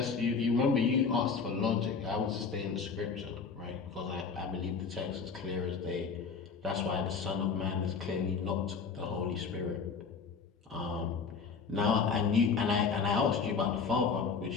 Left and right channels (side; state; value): right; quieter; 5.4 dB